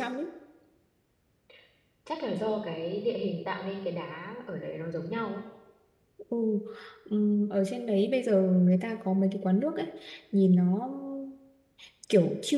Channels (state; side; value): identical; both; correlation 1.00